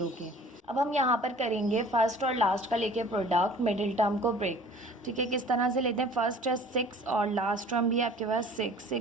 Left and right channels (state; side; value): normal; both; correlation 0.48